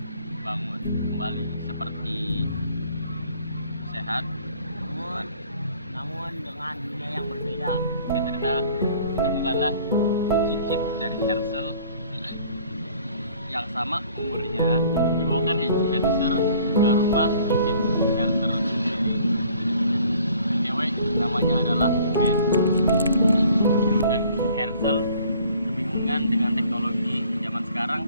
bangun kembali seperti sehat, namun dengan dunia yang berbeda. Cerita ditemukanlah cicit dari Herzl yang sama umurnya, dibawakan Herzl ke rumah cicit Herzl sendiri. Cewek namanya adalah Ben. Dan Herzl kebingungan dengan teknologi zaman sekarang,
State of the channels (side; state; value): both; inverted; correlation -0.55